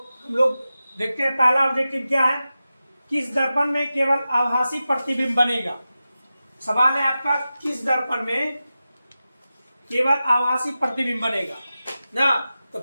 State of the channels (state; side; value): inverted; both; correlation -0.93